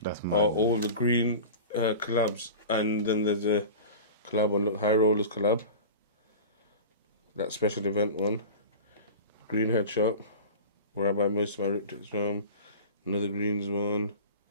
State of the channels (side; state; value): both; inverted; correlation -0.34